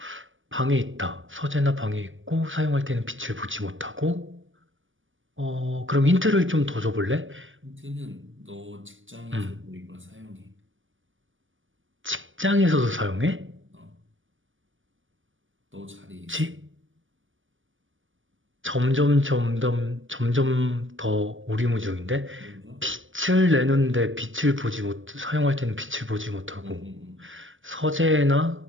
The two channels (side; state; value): left; late; 0.57 ms